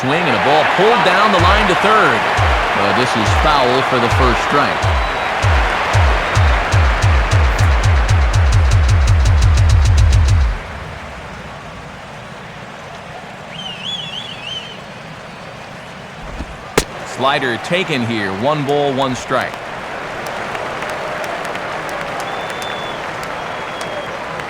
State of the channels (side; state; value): both; identical; correlation 1.00